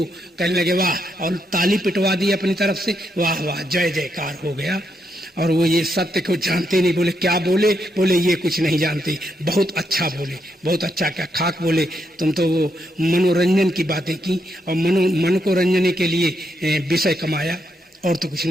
कहने लगे वाह, और ताली पिटवा दी अपनी तरफ से, वाह वाह जय जयकार हो गया। और वो ये सत्य को जानते नहीं। बोले क्या बोले? बोले ये कुछ नहीं जानते। बहुत अच्छा बोले, बहुत अच्छा, क्या खाक बोले। तुम तो वो मनोरंजन की बातें की और मन को रंजने के लिए विषय कमाया, और तो कुछ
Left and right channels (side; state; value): both; normal; correlation 0.80